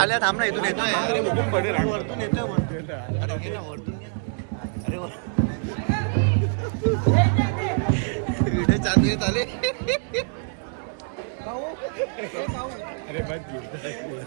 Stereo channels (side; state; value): left; silent; 62 dB below the other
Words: थांब ना, इथून येतोय. अरे वरतून येतोय, वरतून. अरे घे ना, वरतून घे ना. अरे व्हिडिओ चालू येत आले. अरे मत